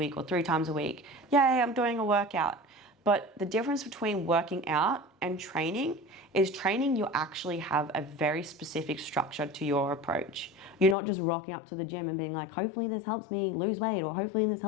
or 3 times a week. Yay, I'm doing a workout. But the difference between working out and training is training, you actually have a very specific structure to your approach. You're not just rocking up to the gym and being like, hopefully this helps me lose weight, or hopefully this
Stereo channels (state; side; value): drops out; right; at 11.0 s